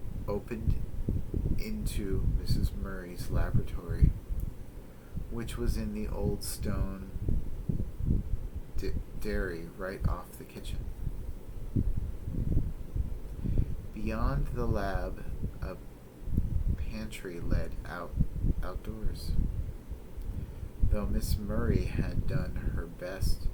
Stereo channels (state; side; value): identical; both; correlation 1.00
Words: opened into Mrs. Murray's laboratory, which was in the old stone dairy right off the kitchen. Beyond the lab, a pantry led outdoors. though Miss Murray had done her best